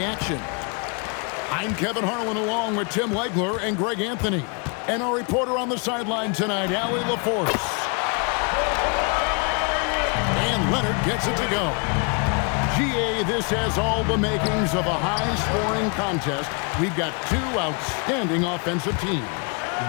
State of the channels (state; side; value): quieter; right; 35.3 dB